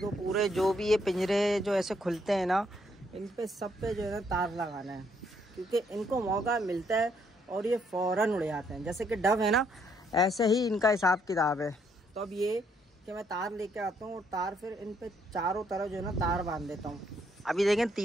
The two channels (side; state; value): both; normal; correlation 0.71